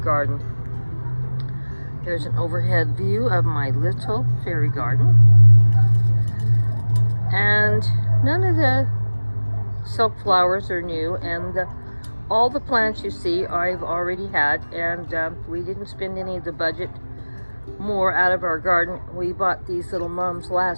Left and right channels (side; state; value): both; inverted; correlation -1.00